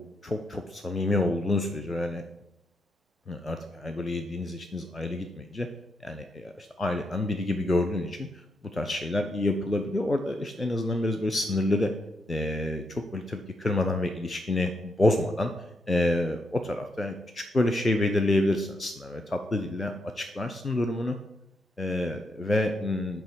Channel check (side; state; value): both; normal; correlation 0.79